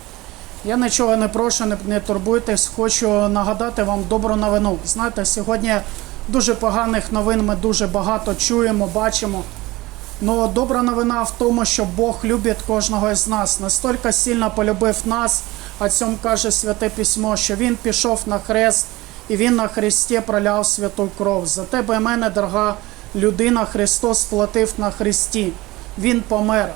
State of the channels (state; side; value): quieter; left; 19.9 dB